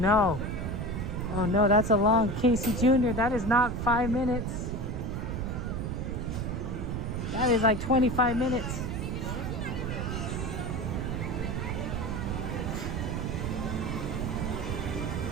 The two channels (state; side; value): noise; right; rumble, 2 dB below the sound